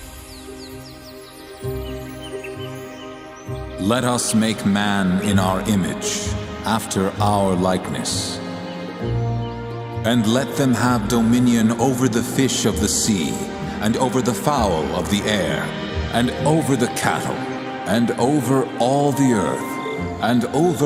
Let us make man in our image, after our likeness. And let them have dominion over the fish of the sea, and over the fowl of the air, and over the cattle, and over all the earth, and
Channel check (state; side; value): identical; both; correlation 1.00